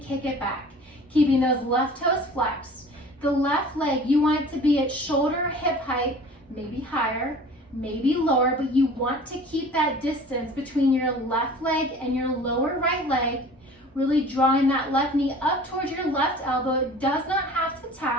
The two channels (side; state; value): both; normal; correlation 0.44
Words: it back, keeping those left toes flexed. The left leg, you want it to be at shoulder hip height, maybe higher, maybe lower, but you want to keep that distance between your left leg and your lower right leg, really drawing that left knee up towards your left elbow. It does not have to